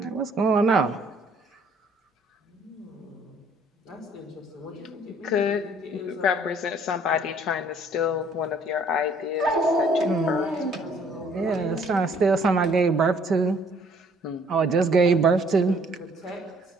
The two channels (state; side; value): normal; both; correlation 0.60